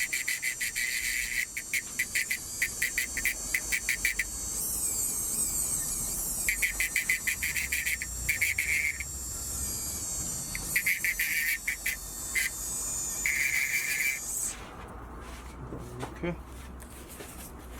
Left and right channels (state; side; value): identical; both; correlation 1.00